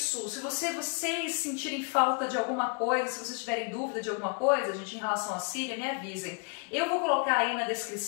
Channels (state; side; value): quieter; right; 35.3 dB